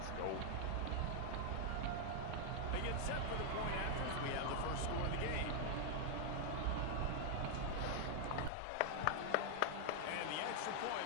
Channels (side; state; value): both; different; correlation 0.00